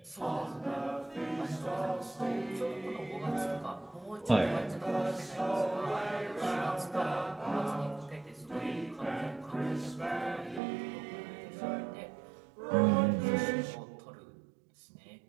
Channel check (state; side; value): drops out; left; at 10.6 s